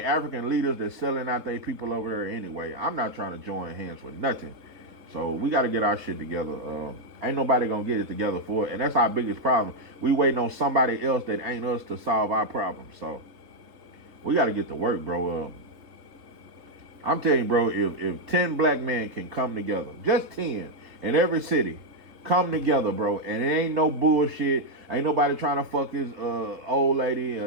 African leaders that's selling out their people over there anyway. I'm not trying to join hands with nothing. So we got to get our shit together. Ain't nobody going to get it together for it. And that's our biggest problem. We waiting on somebody else that ain't us to solve our problems. So we got to get to work, bro. I'm telling you, bro, if 10 black men can come together, just 10 in every city, Come together, bro. And it ain't no bullshit. Ain't nobody trying to fuck his old lady,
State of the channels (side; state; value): left; late; 3.7 ms